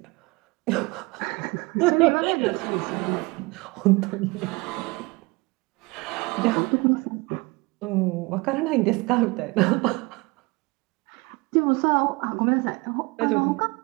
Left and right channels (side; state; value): left; quieter; 25.1 dB